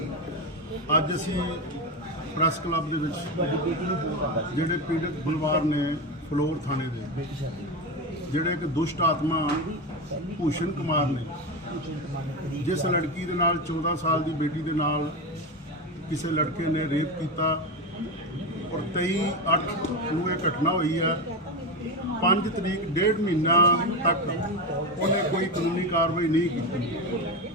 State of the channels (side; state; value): both; normal; correlation 0.17